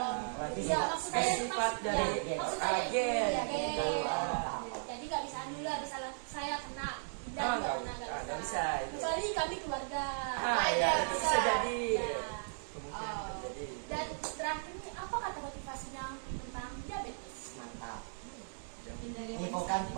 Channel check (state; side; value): silent; left; digital silence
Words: Berarti Iya, sifat- maksud saya sifat dari ya, maksud saya agen. iya, Gitu. agen. Jadi nggak bisa nular, misalnya saya kena dan Ah, juga nggak kena nggak bisa itu. Kecuali kami keluarga. Ah ya, itu bisa jadi. Ya. Kemungkinan Oh. terjadi. Dan terakhir nih, apa kata motivasinya tentang diabetes? mantap. Hindari Ini bukan